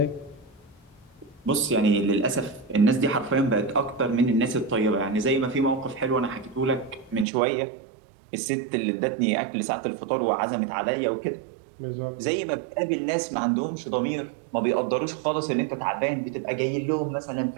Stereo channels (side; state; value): left; drops out; at 7.2 s